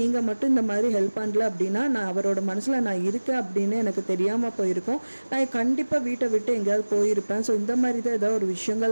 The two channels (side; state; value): both; inverted; correlation -1.00